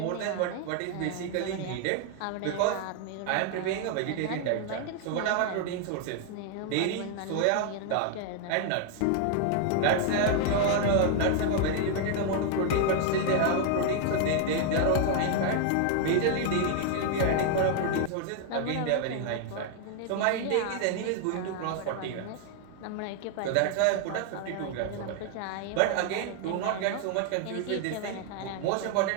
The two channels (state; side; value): different; both; correlation 0.00